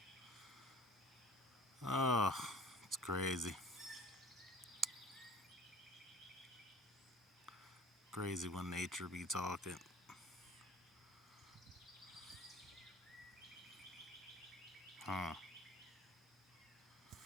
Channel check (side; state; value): both; normal; correlation 0.46